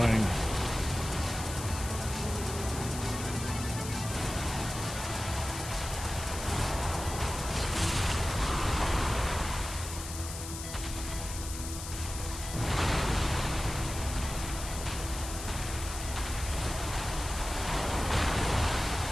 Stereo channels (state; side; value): noise; left; hiss, 9 dB below the sound